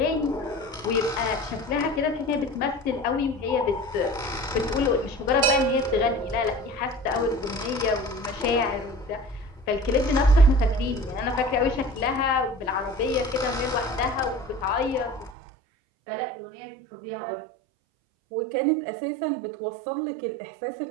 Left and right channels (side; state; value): left; drops out; at 15.3 s